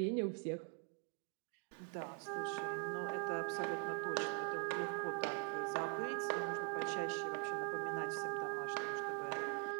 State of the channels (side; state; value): left; quieter; 37.6 dB